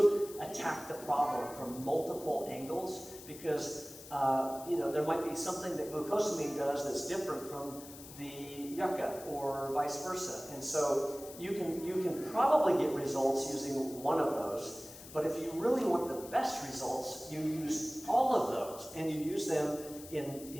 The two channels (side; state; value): left; noise; hiss, 16 dB below the sound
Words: attack the problem from multiple angles, because there might be something that glucosamine does that's different from the yucca, or vice versa. And so you can probably get results using one of those, but if you really want the best results, you use all of those, and you use them